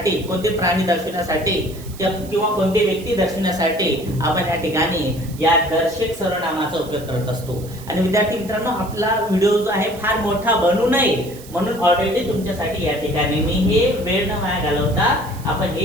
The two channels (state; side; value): noise; right; hiss, 19 dB below the sound